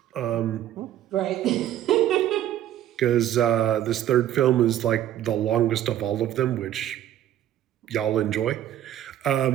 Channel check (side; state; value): left; quieter; 12.0 dB